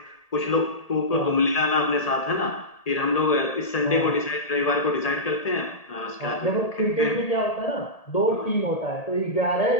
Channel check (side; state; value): right; late; 1.8 ms